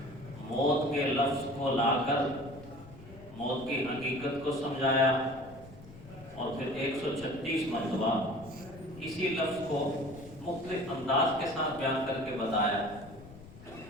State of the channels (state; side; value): noise; left; rumble, 18 dB below the sound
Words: موت کے لفظ کو لا کر موت کی حقیقت کو سمجھایا، اور پھر 136 مرتبہ اسی لفظ کو مختلف انداز کے ساتھ بیان کر کے بتایا